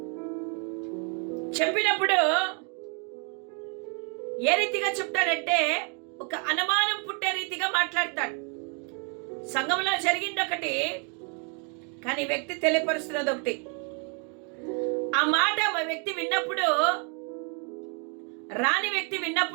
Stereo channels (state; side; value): quieter; left; 37.9 dB